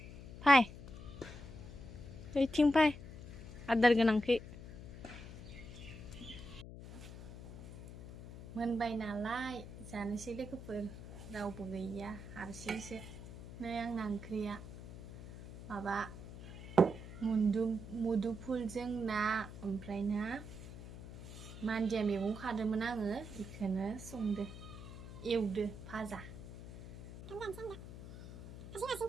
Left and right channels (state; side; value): noise; left; hum, 12 dB below the sound